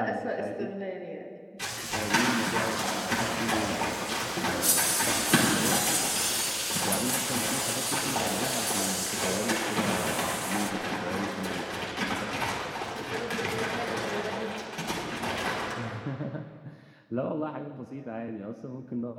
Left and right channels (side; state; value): both; identical; correlation 1.00